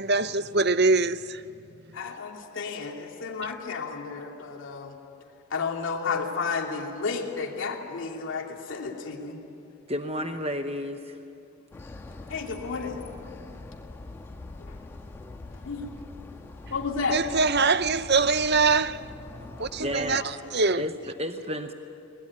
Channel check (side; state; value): both; normal; correlation -0.10